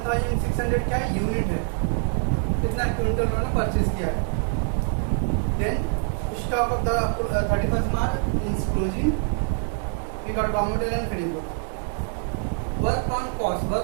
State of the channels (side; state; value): left; silent; 62 dB below the other